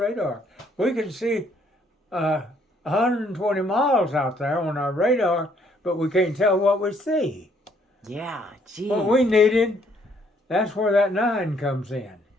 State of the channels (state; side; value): normal; both; correlation 0.66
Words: We can see 120 miles out there on our radar, but we can't tell what we see. Yeah, geez. What we needed, that's where that 9 comes in.